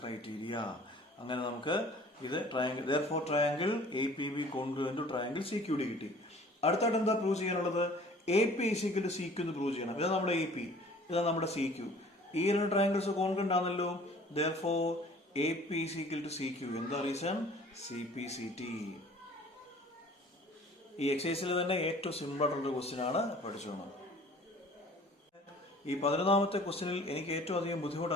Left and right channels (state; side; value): normal; both; correlation 0.50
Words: അങ്ങനെ നമുക്ക് ഇത് triangle therefore triangle APB congruent to triangle CQD കിട്ടി. അടുത്തായിട്ട് എന്താ പ്രൂവ് ചെയ്യാനുള്ളത്? AP ഈക്വൽ ടു CQ എന്ന് പ്രൂവ് ചെയ്യണം. ഇതാ നമ്മുടെ AP, ഇതാ നമ്മുടെ CQ. ഈ രണ്ട് ട്രയാങ്കിൾസ് കോൺഗ്രുവന്റ് ആണല്ലോ. therefore AP equal to CQ. എന്താ റീസൺ? CPCT. ഈ എക്സസൈസിൽ തന്നെ ഏറ്റവും സിമ്പിൾ ആയിട്ടുള്ള ക്വസ്റ്റ്യൻ ആണ്, പഠിച്ചോണം. ഈ 11ാമത്തെ ക്വസ്റ്റ്യനിൽ എനിക്ക് ഏറ്റവും അധികം ബുദ്ധിമുട്ട്